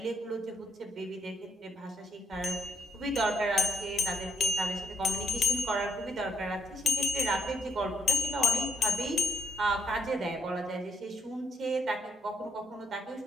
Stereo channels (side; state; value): both; normal; correlation 0.70